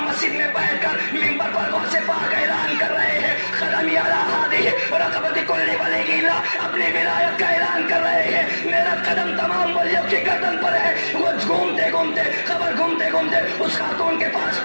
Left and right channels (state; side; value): inverted; both; correlation -1.00